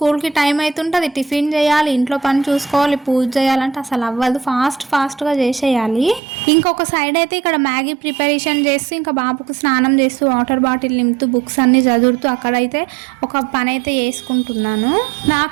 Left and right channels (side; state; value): left; drops out; at 6.2 s